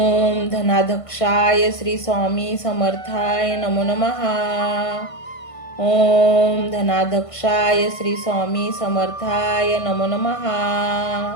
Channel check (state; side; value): late; right; 1.5 ms